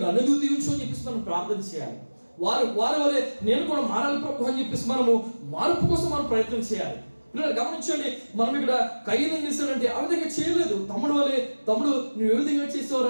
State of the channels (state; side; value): inverted; both; correlation -1.00